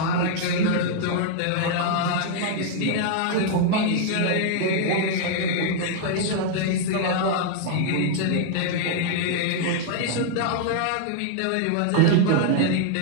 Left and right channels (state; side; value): different; both; correlation -0.01